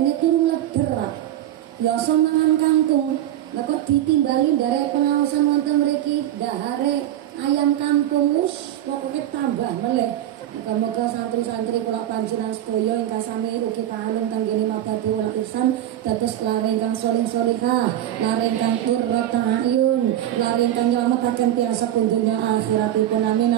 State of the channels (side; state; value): left; quieter; 12.2 dB